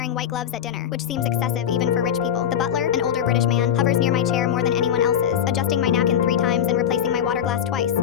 white gloves at dinner, which seems excessive even for rich people. The butler, an older British man, hovers near my chair more than anyone else's, adjusting my napkin 3 times and replacing my water glass twice,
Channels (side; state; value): right; quieter; 9.2 dB